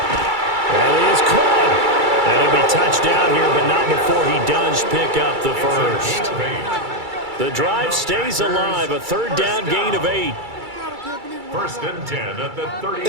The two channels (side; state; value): left; late; 2.3 ms